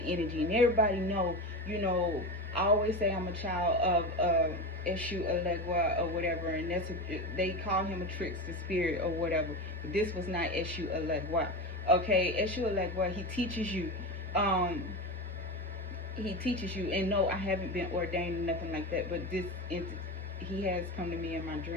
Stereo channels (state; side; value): normal; both; correlation 0.22